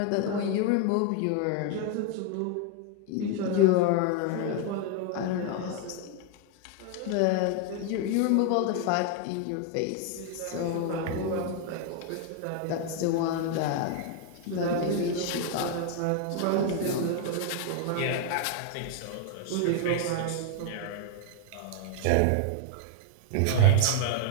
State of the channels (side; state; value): both; different; correlation 0.01